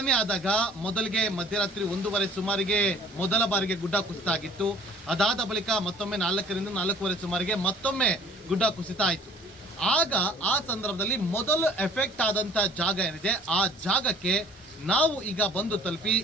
ಆದಾಗ ಮೊದಲಿಗೆ ಮಧ್ಯರಾತ್ರಿ 1:30 ಸುಮಾರಿಗೆ ಮೊದಲ ಬಾರಿಗೆ ಗುಡ್ಡ ಕುಸಿತ ಆಗಿತ್ತು. ಅದಾದ ಬಳಿಕ ಮತ್ತೊಮ್ಮೆ 4ರಿಂದ 4:15 ಸುಮಾರಿಗೆ ಮತ್ತೊಮ್ಮೆ ಗುಡ್ಡ ಕುಸಿತ ಆಯಿತು. ಆಗ ಆ ಸಂದರ್ಭದಲ್ಲಿ ಮೊದಲು ಎಫೆಕ್ಟ್ ಆದಂಥ ಜಾಗ ಏನಿದೆ ಆ ಜಾಗಕ್ಕೆ ನಾವು ಈಗ ಬಂದು ತಲುಪಿ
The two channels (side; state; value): both; normal; correlation 0.52